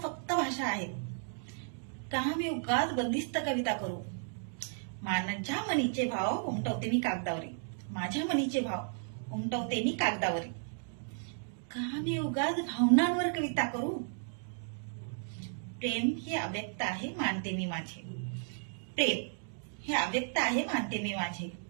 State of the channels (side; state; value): left; silent; digital silence